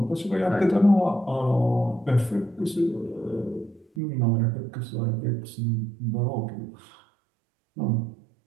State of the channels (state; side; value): drops out; left; at 3.9 s